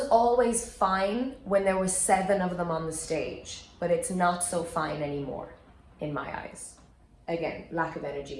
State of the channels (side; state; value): both; identical; correlation 1.00